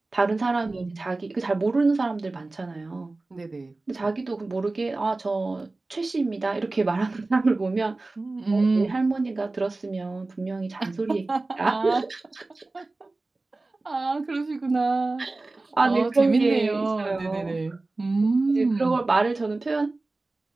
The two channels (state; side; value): quieter; left; 3.2 dB